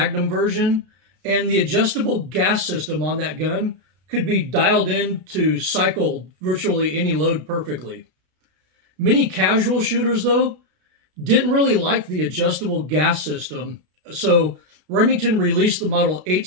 version, and the adjustable gas system on that gun could be dialed in to cycle virtually any load perfectly. Many casual shooters, though, didn't really like the adjustable gas system, so Remington released the Model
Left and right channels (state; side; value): late; left; 32 ms